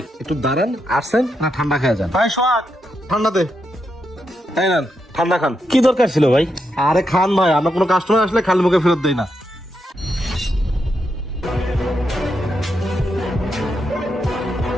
একটু দাঁড়ান, আসছেন না ঠান্ডা খেয়ে যান। ভাই সোহাগ, ঠান্ডা দে, তাই না, ঠান্ডা খান। কি দরকার ছিল ভাই? আরে খান ভাই, আমরা কোনো কাস্টমার আসলে খালি মুখে ফেরত দেই না।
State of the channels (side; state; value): both; normal; correlation 0.83